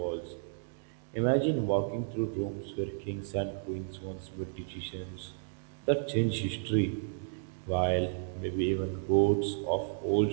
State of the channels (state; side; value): silent; left; digital silence